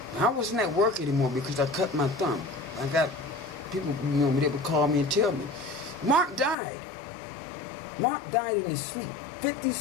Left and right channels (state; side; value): drops out; right; at 6.6 s